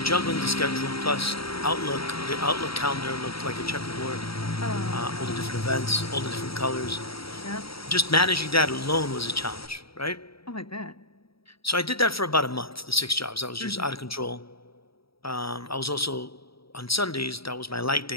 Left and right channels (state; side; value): late; right; 0.75 ms